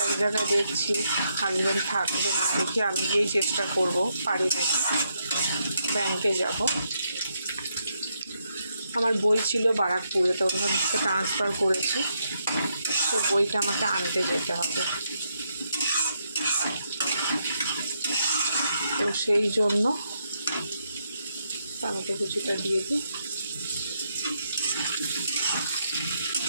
এক জায়গায়, দেখছি হাজব্যান্ড থাকবে না, দেখি আমি গিয়েই চেষ্টা করব পারি নাকি। ব্যাংকে যাব, আমার বই ছিল বারাকপুরে, তো ওখান থেকে ট্রান্সফার করেছি, সে বইটা আমাকে আনতে যেতে হবে। তো সেই জন্য টমেটো কুচিটা দিয়ে দিই,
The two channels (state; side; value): inverted; both; correlation -0.79